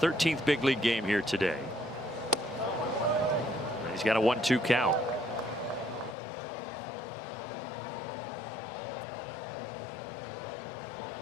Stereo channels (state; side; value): drops out; right; at 6.2 s